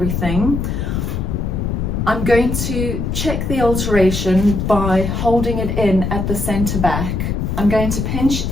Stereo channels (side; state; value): left; noise; rumble, 2 dB below the sound